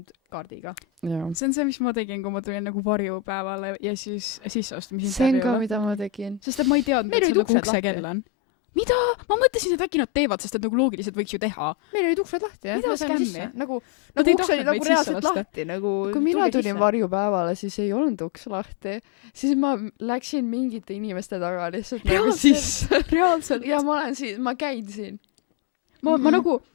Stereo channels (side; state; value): right; drops out; at 7.6 s